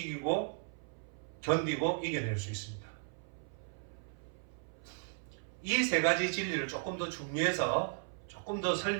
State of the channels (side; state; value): left; silent; 54 dB below the other